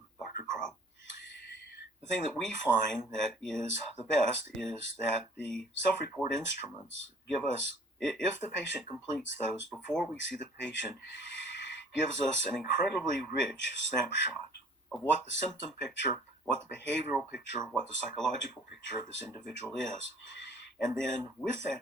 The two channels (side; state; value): both; normal; correlation 0.52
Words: Dr. Crow, the thing that we find that is the best is that the self-report instruments give us, if the patient completes those before we see the patient, gives us an incredibly rich snapshot of what the symptom picture, what the behavioral picture, what the psychological picture of this individual is. And then with that